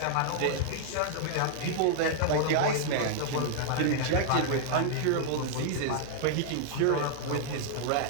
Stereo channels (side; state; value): both; different; correlation -0.01